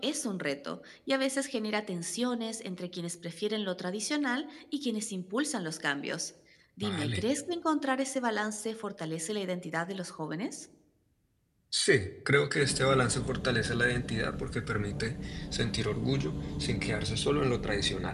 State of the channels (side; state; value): both; identical; correlation 1.00